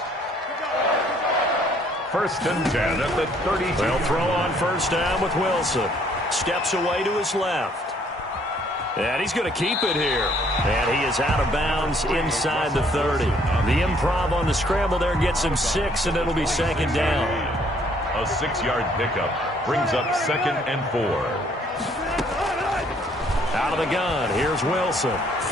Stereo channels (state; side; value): normal; both; correlation 0.64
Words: 1st and 10 at the 32. They'll throw on 1st down with Wilson. Steps away to his left. And he's going to keep it here. And he is out of bounds inside the 30. The improv on the scramble there gets him 6, and it'll be 2nd down. A 6-yard pickup brings up 2nd and 4. Out of the gun, here's Wilson.